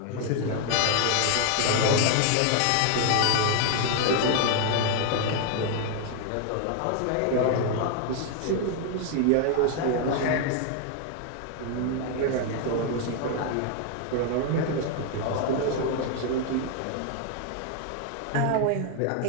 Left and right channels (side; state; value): both; different; correlation 0.00